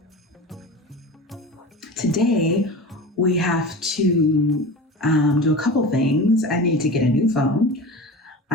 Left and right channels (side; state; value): both; normal; correlation 0.32